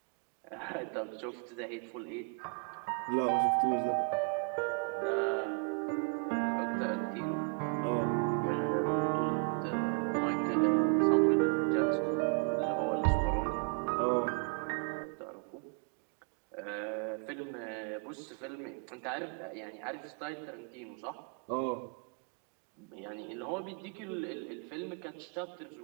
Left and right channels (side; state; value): left; quieter; 38.2 dB